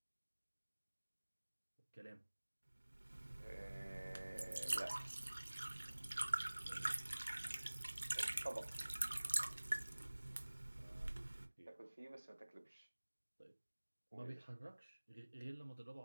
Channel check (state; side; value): inverted; both; correlation -1.00